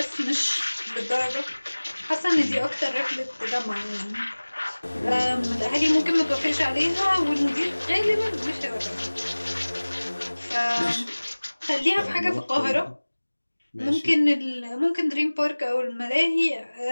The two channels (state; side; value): inverted; both; correlation -1.00